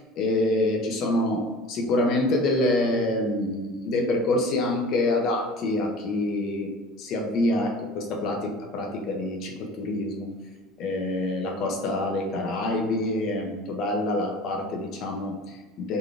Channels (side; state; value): both; normal; correlation 0.42